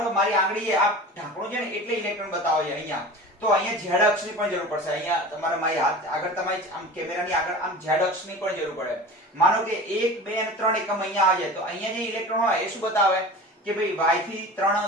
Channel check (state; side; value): normal; both; correlation 0.35